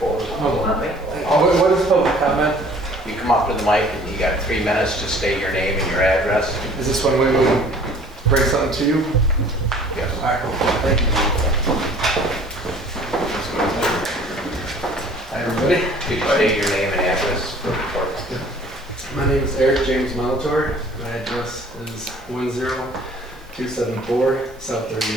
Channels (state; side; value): normal; both; correlation 0.52